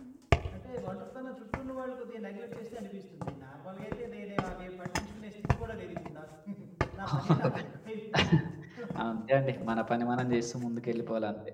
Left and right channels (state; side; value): identical; both; correlation 1.00